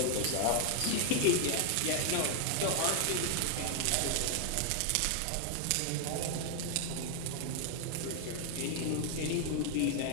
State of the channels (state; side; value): different; both; correlation 0.00